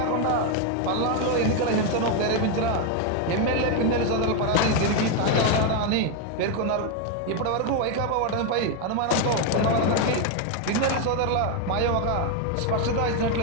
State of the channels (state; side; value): different; both; correlation 0.01